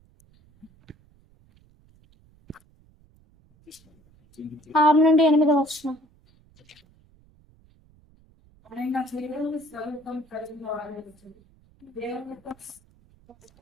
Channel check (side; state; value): right; noise; rumble, 30 dB below the sound